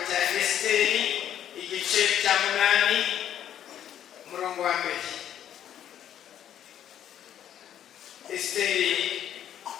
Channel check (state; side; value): quieter; right; 10.4 dB